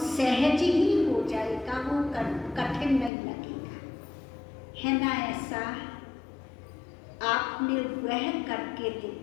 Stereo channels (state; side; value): drops out; right; at 3.1 s